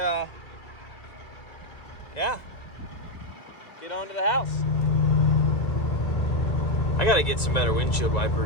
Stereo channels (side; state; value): right; late; 2.0 ms